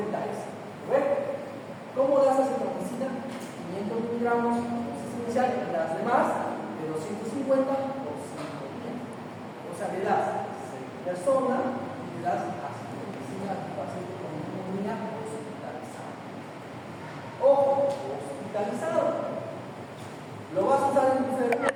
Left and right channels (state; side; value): identical; both; correlation 1.00